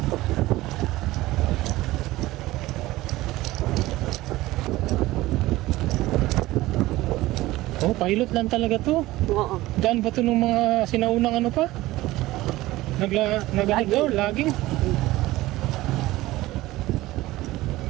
Oh, pilot lang talaga to. Oo. Daan ba to nung mga sinaunang ano pa? Laging.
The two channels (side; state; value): left; quieter; 17.8 dB